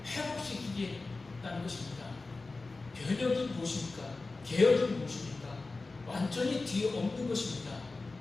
회복시키겠다는 것입니다. 변혁이 무엇입니까? 개혁이 무엇입니까? 완전히 뒤에 없는 것입니다.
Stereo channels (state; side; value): quieter; right; 3.6 dB